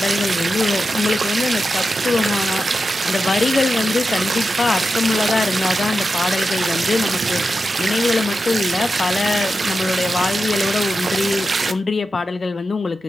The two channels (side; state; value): both; normal; correlation 0.90